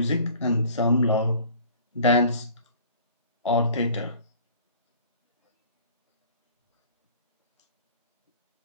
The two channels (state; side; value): inverted; both; correlation -0.49